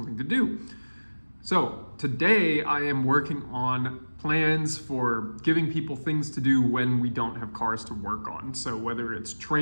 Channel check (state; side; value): inverted; both; correlation -1.00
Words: to do. So today I am working on plans for giving people things to do when we don't have cars to work on. So whether it's